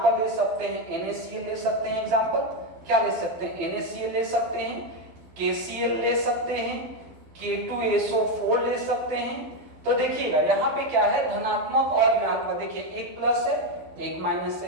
ले सकते हैं NaCl ले सकते हैं। एग्जाम्पल क्या ले सकते हैं? NaCl ले सकते हैं, KCl ले सकते हैं, K2SO4 ले सकते हैं। तो देखिएगा यहाँ पे क्या है, धनात्मक और ऋणात्मक। देखिए एक प्लस है, एक माइनस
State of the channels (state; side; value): late; left; 12 ms